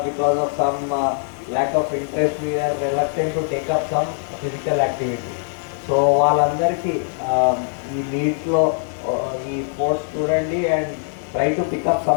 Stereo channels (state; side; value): silent; right; digital silence